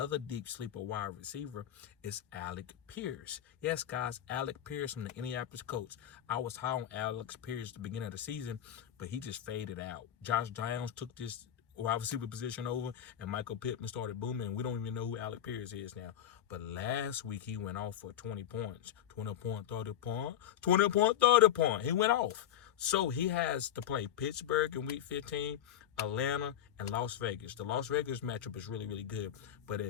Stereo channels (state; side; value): quieter; right; 10.8 dB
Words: deep sleeper wide receiver is Alec Pierce. Yes, guys, Alec Pierce from the Indianapolis Colts. I was high on Alex Pierce at the beginning of the season, but he just faded out. Josh Downs took this wide receiver position over, and Michael Pittman started booming. We don't even know who Alec Pierce is now. But last week, he went off for 20 points. 20 point, 30 point, 20 point, 30 point. He went off. So he has to play Pittsburgh in Week 15, Atlanta, and Las Vegas. The Las Vegas matchup is really, really good. But